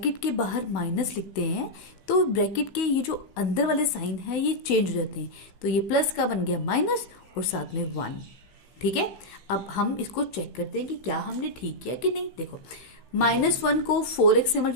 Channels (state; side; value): late; right; 16 ms